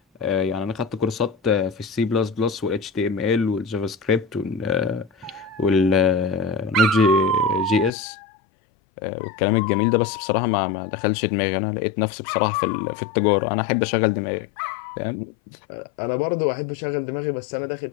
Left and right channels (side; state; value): right; drops out; at 7.9 s